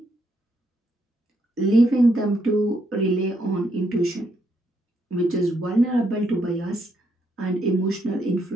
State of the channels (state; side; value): normal; both; correlation 0.76